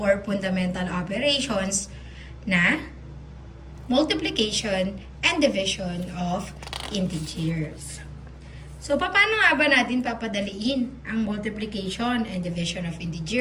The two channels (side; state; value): both; identical; correlation 1.00